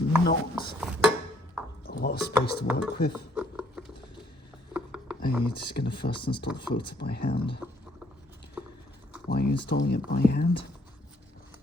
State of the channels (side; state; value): both; normal; correlation 0.66